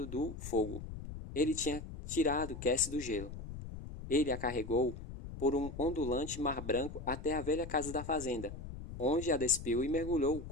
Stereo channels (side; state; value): left; noise; rumble, 10 dB below the sound